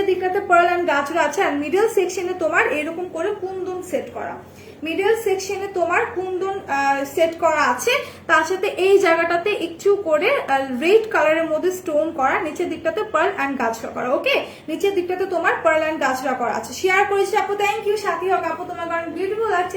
দিকটাতে পার্ল অ্যান্ড গাছরা আছে, আর মিডল সেকশনে তোমার এরকম করে কুন্দন সেট করা, মিডল সেকশনে তোমার কুন্দন সেট করা আছে, তার সাথে এই জায়গাটাতে একটু করে রেড কালারের মধ্যে স্টোন করা, নিচের দিকটাতে পার্ল অ্যান্ড গাছরা করা। ওকে, নিচের দিকটাতে তোমার পার্ল অ্যান্ড গাছরা করা আছে। শেয়ার করেছি আপু, থ্যাংক ইউ। সাথী হোক আপু, তোমার কারণ বিউটিফুল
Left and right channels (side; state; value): both; identical; correlation 1.00